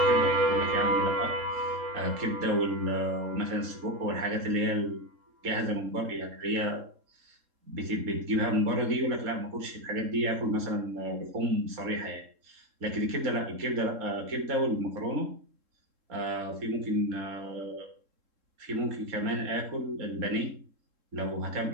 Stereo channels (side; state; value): left; late; 3.7 ms